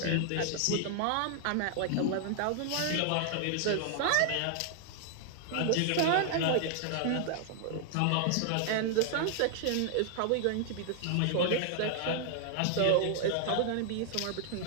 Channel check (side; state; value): both; different; correlation 0.00